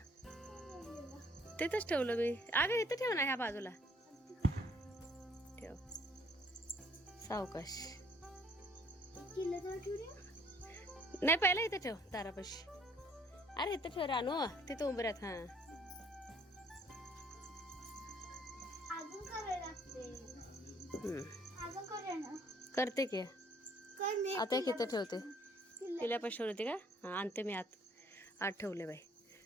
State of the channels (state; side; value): normal; both; correlation 0.62